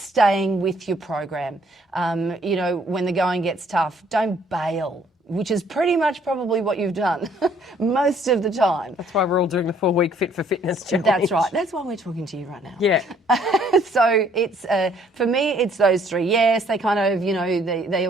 with your program. When the going gets tough, don't bail, which is pretty much probably what you've done most of the time. That's why we're all doing the 4-week Fit for Fitness challenge. That's right. That's why we're talking to you right now. Yeah. So it's for me, it's those three. Yes, they kind of, they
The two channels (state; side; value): normal; both; correlation 0.62